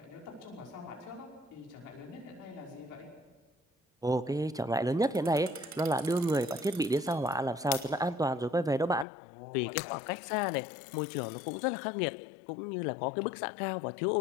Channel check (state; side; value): drops out; right; at 9.1 s